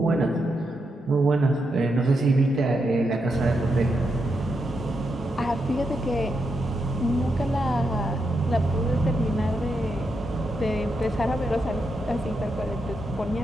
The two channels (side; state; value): both; normal; correlation 0.83